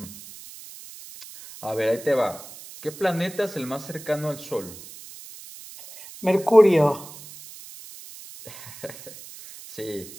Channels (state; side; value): noise; right; hiss, 16 dB below the sound